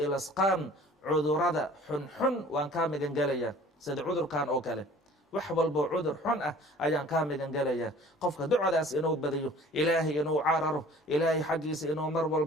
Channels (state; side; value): normal; both; correlation 0.49